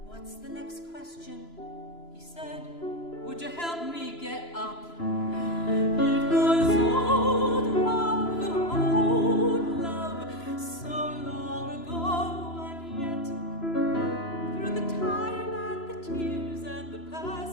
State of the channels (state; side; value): late; right; 3.0 ms